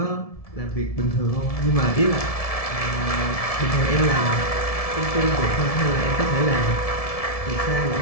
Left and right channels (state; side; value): late; right; 1.7 ms